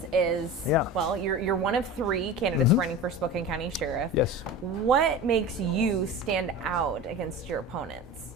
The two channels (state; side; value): normal; both; correlation 0.32